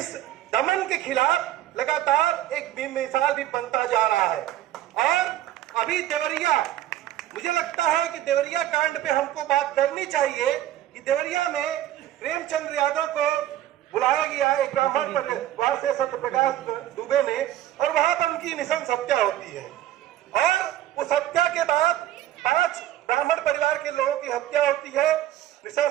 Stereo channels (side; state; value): left; quieter; 13.1 dB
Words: दमन के खिलाफ लगातार एक बेमिसाल भी बनता जा रहा है। और अभी देवरिया, मुझे लगता है कि देवरिया कांड पे हमको बात करनी चाहिए कि देवरिया में प्रेमचंद्र यादव को बुलाया गया एक ब्राह्मण परिवार से, सत्यप्रकाश दुबे ने, और वहां पर उनकी निशंस हत्या होती है। और उस हत्या के बाद 5 ब्राह्मण परिवार के लोगों की हत्या होती है